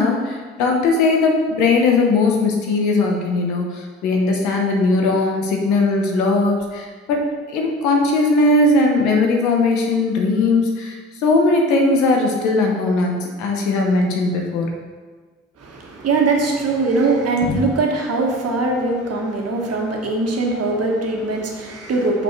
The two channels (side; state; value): both; normal; correlation 0.37